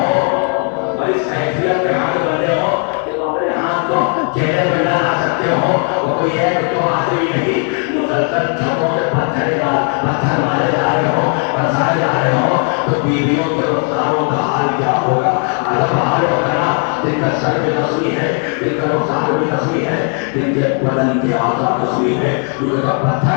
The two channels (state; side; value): quieter; right; 38.8 dB